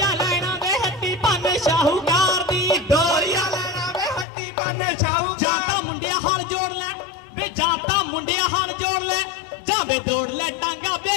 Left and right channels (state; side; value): drops out; right; at 4.2 s